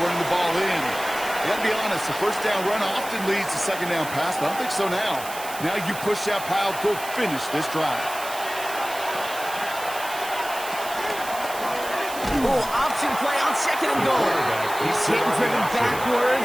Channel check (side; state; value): right; noise; hiss, 12 dB below the sound